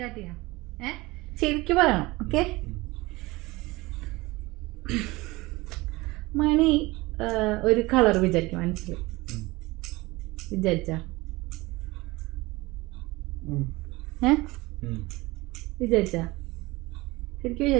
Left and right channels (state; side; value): quieter; left; 21.6 dB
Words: ചെയ്യാം. ശരിക്കും പറയണം. ഓക്കെ. മണി ഒരു കളർ വിചാരിക്കും മനസ്സിൽ. വിചാരിച്ചാ വിചാരിച്ചാ ശരിക്കും